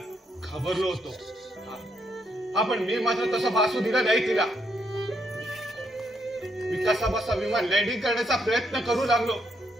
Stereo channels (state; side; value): normal; both; correlation 0.75